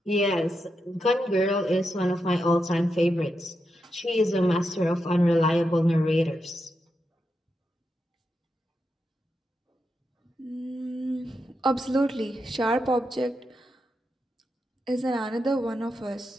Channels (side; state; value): both; normal; correlation 0.86